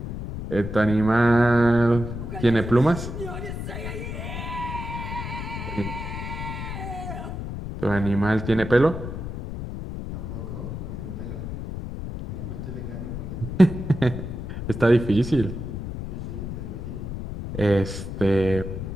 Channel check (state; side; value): noise; left; rumble, 7 dB below the sound